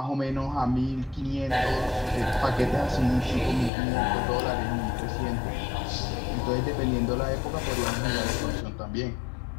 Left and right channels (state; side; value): drops out; right; at 3.7 s